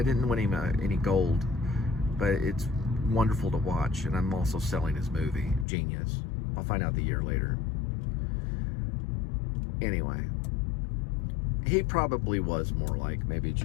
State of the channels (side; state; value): right; drops out; at 5.7 s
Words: didn't win him any gold. But it's wonderful to watch, and I'm also selling his movie, Genius. I'll find out the year later. Anyway, he probably was more like maybe